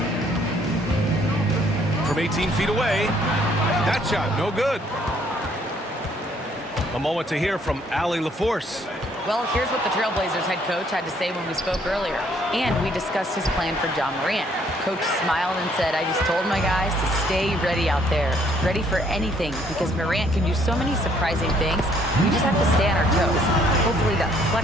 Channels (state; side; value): normal; both; correlation 0.65